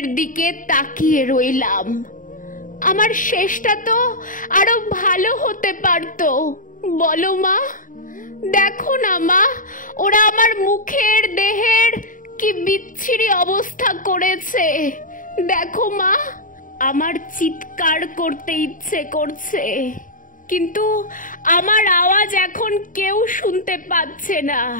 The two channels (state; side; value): late; right; 0.39 ms